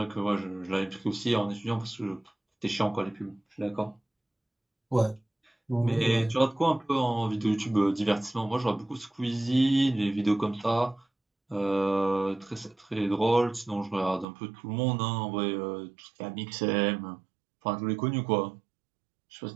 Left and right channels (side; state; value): left; drops out; at 14.2 s